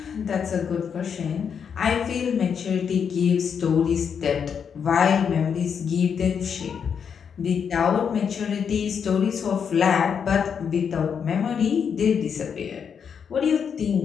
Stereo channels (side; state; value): right; quieter; 7.1 dB